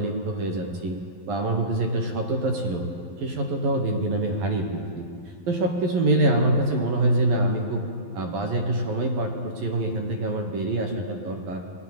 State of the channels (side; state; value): left; late; 11 ms